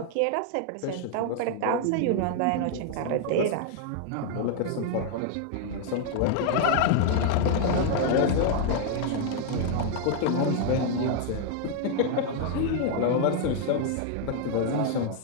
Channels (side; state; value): both; different; correlation 0.00